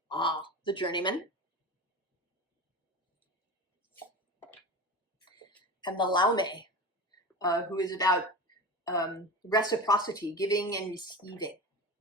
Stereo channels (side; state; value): both; normal; correlation 0.29